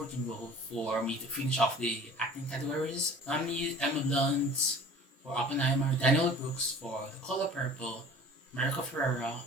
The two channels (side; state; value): both; normal; correlation 0.45